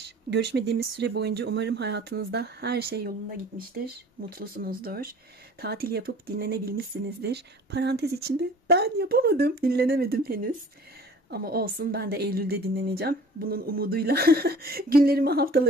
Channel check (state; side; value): normal; both; correlation 0.47